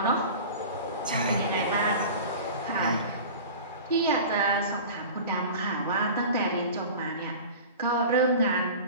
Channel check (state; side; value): inverted; both; correlation -0.36